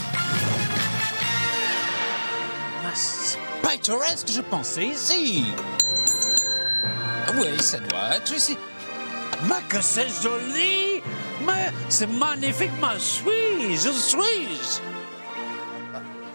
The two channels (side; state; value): both; inverted; correlation -1.00